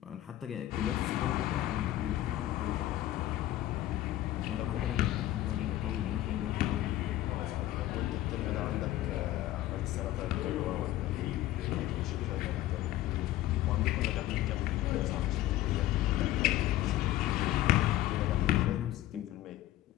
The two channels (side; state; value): right; quieter; 14.7 dB